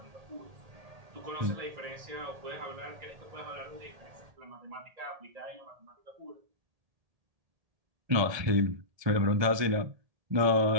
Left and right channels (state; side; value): late; left; 1.8 ms